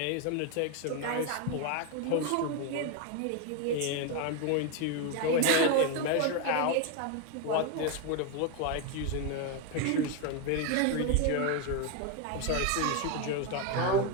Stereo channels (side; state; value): both; different; correlation 0.02